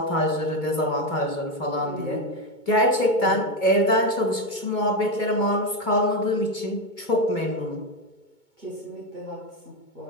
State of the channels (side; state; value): right; late; 2.2 ms